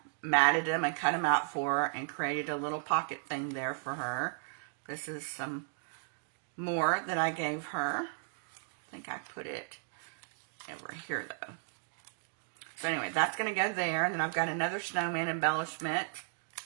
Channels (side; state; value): left; silent; digital silence